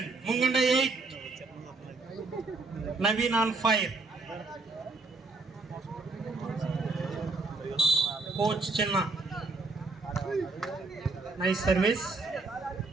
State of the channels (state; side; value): quieter; left; 3.6 dB